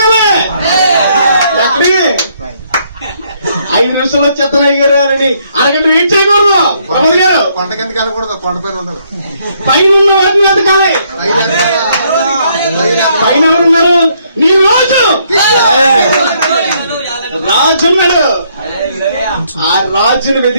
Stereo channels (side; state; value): both; inverted; correlation -0.70